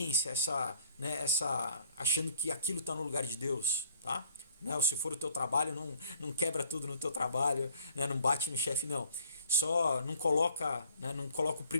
achando que aquilo está no lugar de Deus, tá? Né? Ou se for o teu trabalho, não quebra tudo no teu trabalho, né? Não bate no chefe, não. Só não coloca, né, não coloca o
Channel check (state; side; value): inverted; both; correlation -0.59